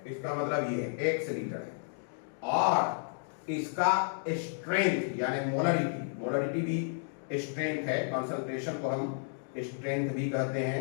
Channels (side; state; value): right; silent; digital silence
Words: इसका मतलब ये है x लीटर है और इसका स्ट्रेंथ यानी मोलरिटी, मोलरिटी भी स्ट्रेंथ है, कंसंट्रेशन को हम स्ट्रेंथ भी कहते